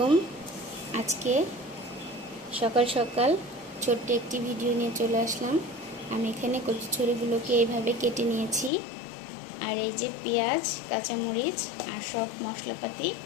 আজকে সকাল সকাল ছোট্ট একটি ভিডিও নিয়ে চলে আসলাম। আমি এখানে কচুরিগুলোকে এইভাবে কেটে নিয়েছি। আর এই যে পেঁয়াজ, কাঁচামরিচ আর সব মশলাপাতি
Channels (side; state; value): right; drops out; at 8.7 s